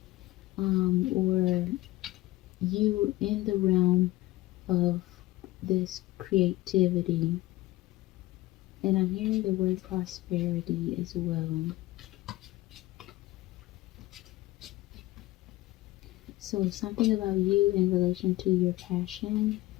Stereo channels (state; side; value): quieter; right; 18.0 dB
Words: or you in the realm of this creativity. And I'm hearing the word prosperity as well. So something about you in relation to your passion